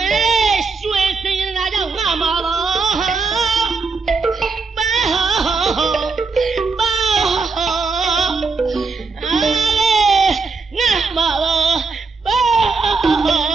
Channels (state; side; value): quieter; left; 4.4 dB